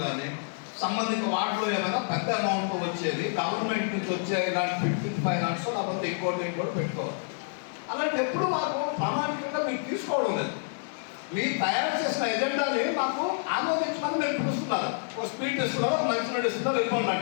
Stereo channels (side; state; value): right; silent; 59 dB below the other